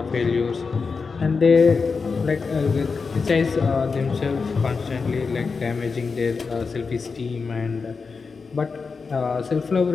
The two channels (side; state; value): right; quieter; 4.9 dB